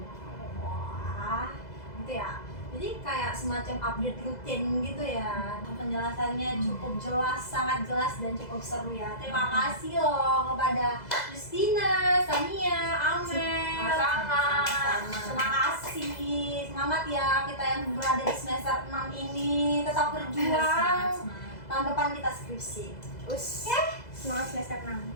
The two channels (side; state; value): right; late; 2.0 ms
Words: wah, gitu ya. Jadi kayak semacam update rutin gitu ya. Penjelasannya cukup jelas, sangat jelas dan cukup seru ya. Terima kasih loh kepada Justina, Sania, Amel. Sama-sama. Terima kasih. Semangat ya kita yang berada di semester 6 ini. Tetap berjuang. Tahun depan kita skripsi. Semangat semester 6.